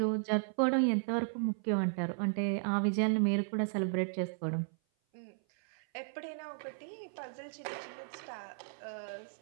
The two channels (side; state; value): left; silent; 54 dB below the other